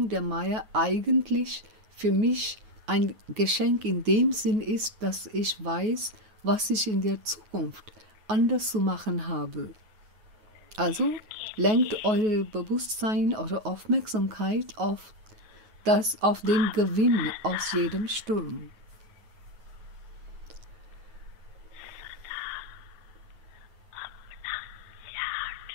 der Maya eigentlich für mich ein Geschenk in dem Sinn ist, dass ich weiß, was ich in der Zukunft anders zu machen habe. Also lenkt euer Bewusstsein, eure Aufmerksamkeit auf den Gewinn aus jedem Sturm.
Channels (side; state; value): left; late; 9.3 ms